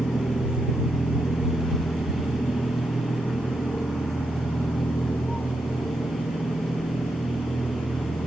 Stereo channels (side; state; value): both; normal; correlation 0.83